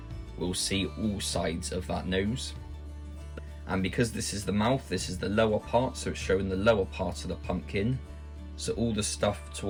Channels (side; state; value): both; identical; correlation 1.00